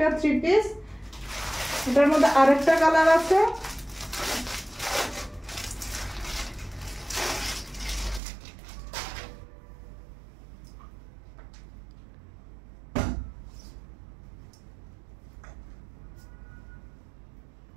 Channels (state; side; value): drops out; left; at 8.2 s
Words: থ্রি পিস। এটার মধ্যে আরেকটা কালার আছে,